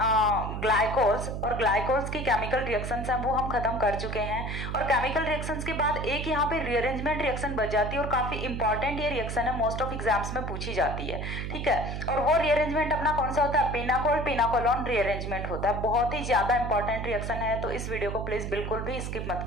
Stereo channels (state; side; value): noise; right; hum, 4 dB below the sound